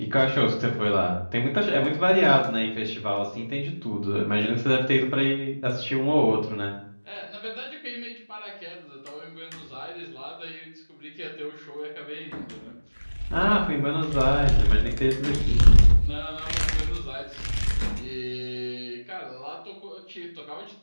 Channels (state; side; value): inverted; both; correlation -1.00